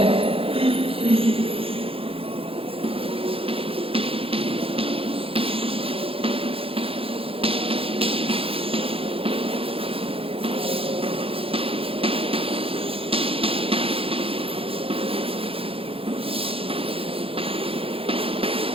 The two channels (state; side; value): late; left; 0.27 ms